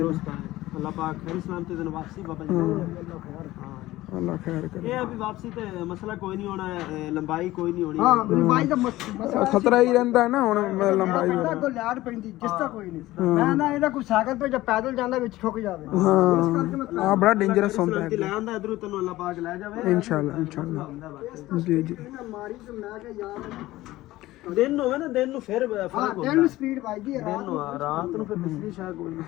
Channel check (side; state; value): right; quieter; 17.0 dB